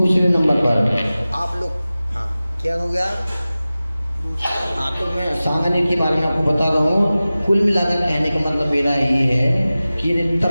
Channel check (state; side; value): inverted; both; correlation -0.96